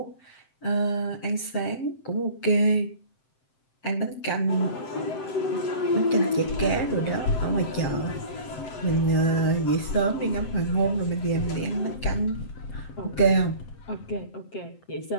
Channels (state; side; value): late; right; 7.7 ms